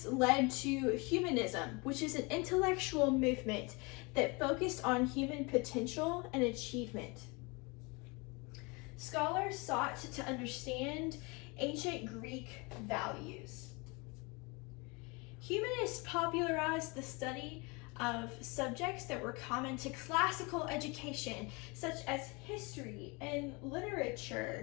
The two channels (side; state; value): right; quieter; 28.1 dB